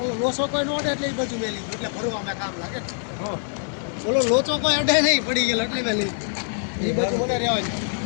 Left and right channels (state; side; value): silent; right; 62 dB below the other